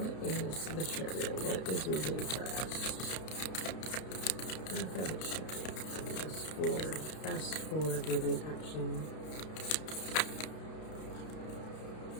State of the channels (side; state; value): right; late; 32 ms